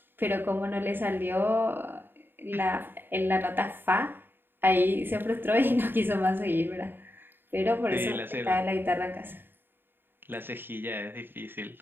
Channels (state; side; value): late; left; 0.098 ms